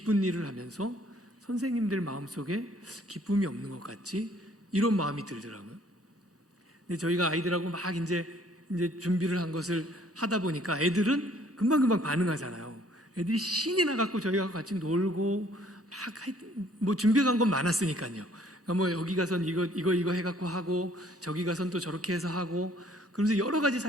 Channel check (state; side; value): normal; both; correlation 0.60